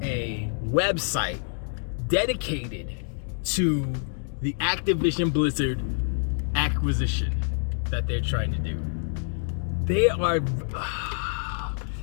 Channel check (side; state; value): right; silent; digital silence